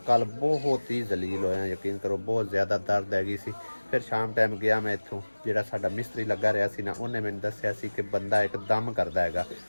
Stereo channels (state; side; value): inverted; both; correlation -1.00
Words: ਕੱਲ ਬਹੁਤ ਹੀ ਜ਼ਲੀਲ ਹੋਇਆ, ਯਕੀਨ ਕਰੋ ਬਹੁਤ ਜ਼ਿਆਦਾ ਦਰਦ ਹੈਗੀ ਸੀ। ਫਿਰ ਸ਼ਾਮ ਟਾਈਮ ਗਿਆ ਮੈਂ ਇੱਥੋਂ, ਜਿਹੜਾ ਸਾਡਾ ਮਿਸਤਰੀ ਲੱਗਾ ਰਿਹਾ ਸੀ ਨਾ, ਉਹਨੇ ਮੈਨੂੰ ਦੱਸਿਆ ਸੀ ਕਿ ਬੰਦਾ ਇੱਕਦਮ ਕਰਦਾ ਹੈਗਾ,